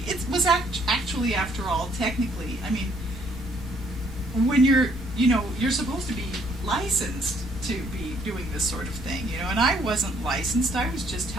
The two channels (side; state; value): both; normal; correlation 0.66